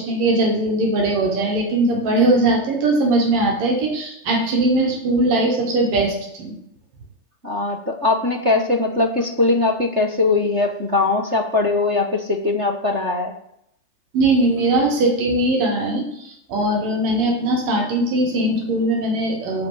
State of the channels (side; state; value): left; late; 3.3 ms